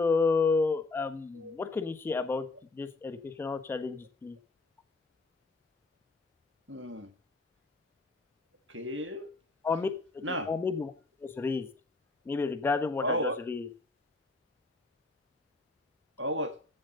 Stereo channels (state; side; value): quieter; right; 3.4 dB